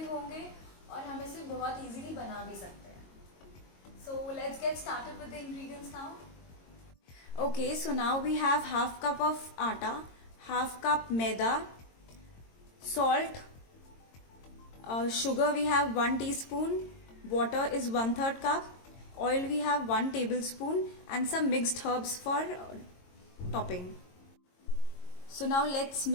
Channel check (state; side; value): late; right; 22 ms